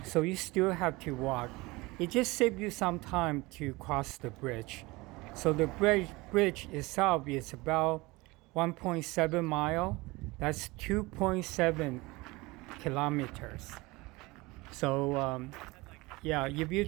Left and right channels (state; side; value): quieter; left; 22.6 dB